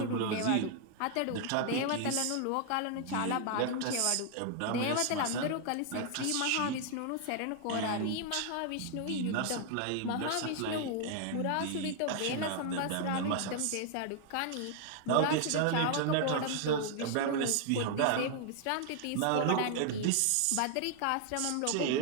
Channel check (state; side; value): different; both; correlation 0.00